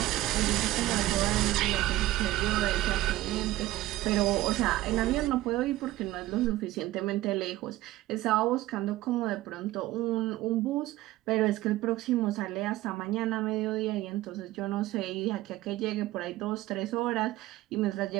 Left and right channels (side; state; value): left; quieter; 16.2 dB